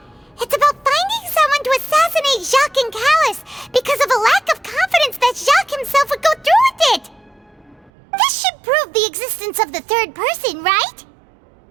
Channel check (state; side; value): drops out; left; at 7.9 s